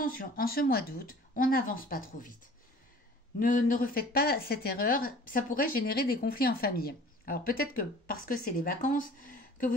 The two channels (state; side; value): normal; both; correlation 0.47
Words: en ce mois d'août, on n'avance pas trop vite. Ne refaites pas cette erreur, ça pourrait générer des conflits en famille. Alors peut-être que parce que c'est les vacances, que